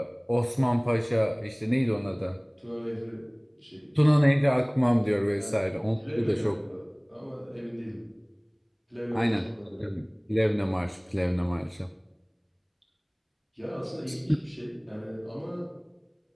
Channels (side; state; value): both; identical; correlation 1.00